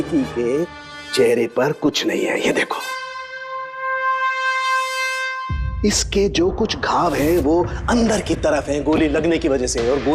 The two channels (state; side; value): identical; both; correlation 1.00